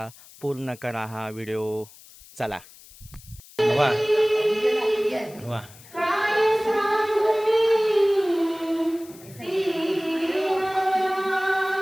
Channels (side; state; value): left; noise; hiss, 22 dB below the sound